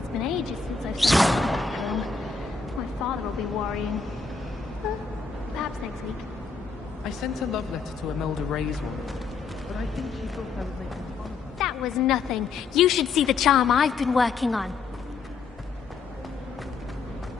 been ages since I've seen a broom. My father will be worrying. Perhaps next week. I sent a love letter to Imelda Ray's one, but I think she thought I was making fun of her. That was nothing. You should see the charm I've been working on.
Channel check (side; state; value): right; quieter; 5.0 dB